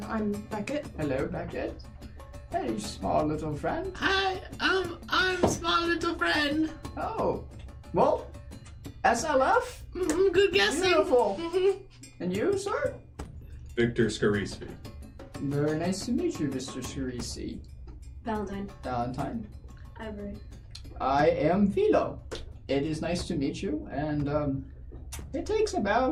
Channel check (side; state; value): both; identical; correlation 1.00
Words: Beckett. Hello, Beckett. Hey, small little friend. Hi, I'm small little friend. Oh, well, SLF? Mm-hmm, good guessing. Beautiful. Mm-hmm. And you, sir? Victor Scarisfi. Very nice to meet you, Mr. Shirisi. Valentine. Valentine. Ivory. I am Philo. It is nice to meet you, and it takes